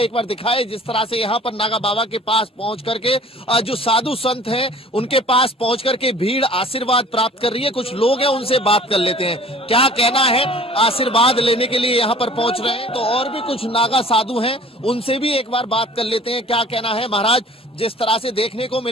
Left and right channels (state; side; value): normal; both; correlation 0.48